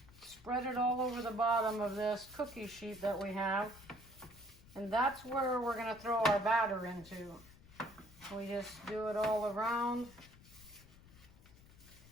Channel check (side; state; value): left; noise; rumble, 22 dB below the sound